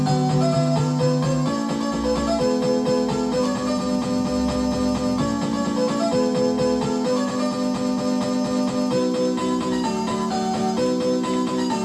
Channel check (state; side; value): identical; both; correlation 1.00